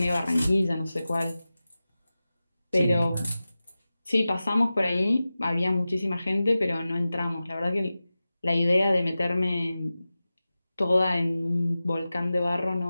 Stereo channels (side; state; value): both; inverted; correlation -0.95